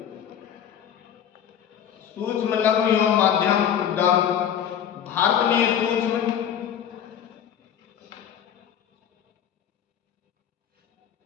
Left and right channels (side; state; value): right; quieter; 9.2 dB